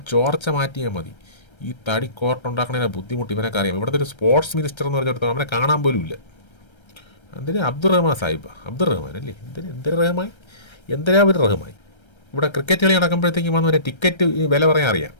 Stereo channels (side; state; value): right; late; 1.3 ms